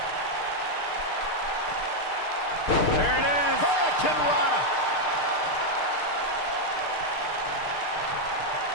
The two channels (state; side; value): late; right; 6.6 ms